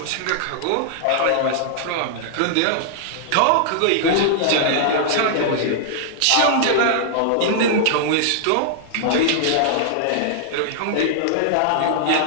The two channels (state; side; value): different; both; correlation -0.01